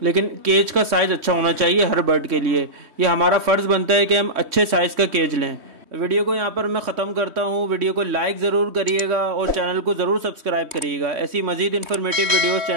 लेकिन केज का साइज़ अच्छा होना चाहिए हर बर्ड के लिए। ये हमारा फ़र्ज़ बनता है कि हम अच्छे साइज़ का केज लें। वीडियो को यहाँ पर मैं ख़त्म करता हूँ। वीडियो को लाइक ज़रूर करिएगा और चैनल को ज़रूर सब्सक्राइब करिएगा। ऐसी मज़ीद इन्फॉर्मेटिव वीडियोस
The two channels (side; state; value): left; late; 3.1 ms